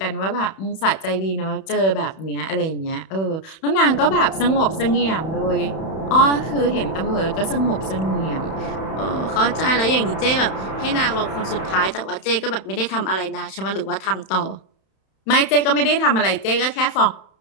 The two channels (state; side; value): late; right; 31 ms